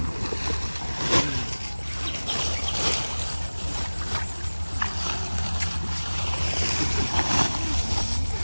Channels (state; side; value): inverted; both; correlation -1.00